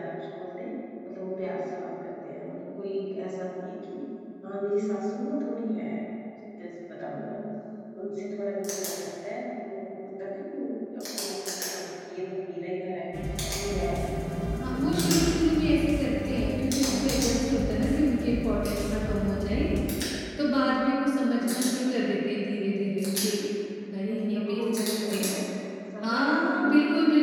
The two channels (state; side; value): identical; both; correlation 1.00